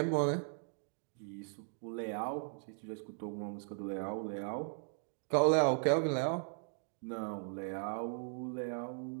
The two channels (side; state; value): left; silent; digital silence